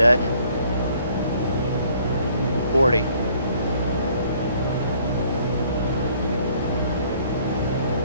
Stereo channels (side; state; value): both; inverted; correlation -0.61